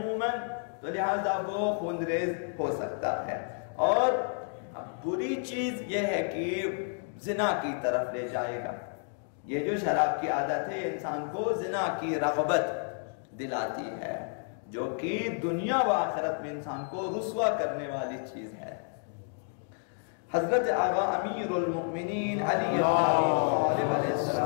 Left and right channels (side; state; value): right; silent; 57 dB below the other